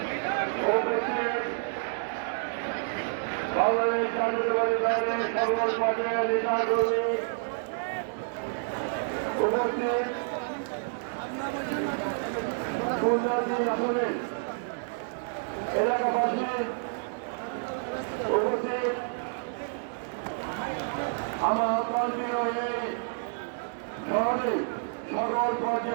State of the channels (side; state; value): left; silent; digital silence